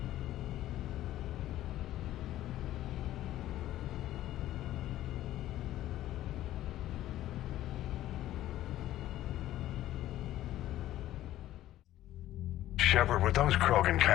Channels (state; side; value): quieter; right; 13.9 dB